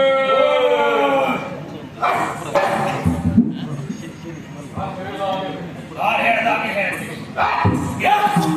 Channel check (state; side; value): identical; both; correlation 1.00